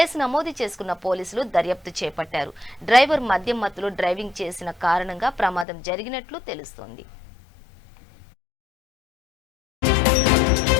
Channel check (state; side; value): drops out; right; at 5.7 s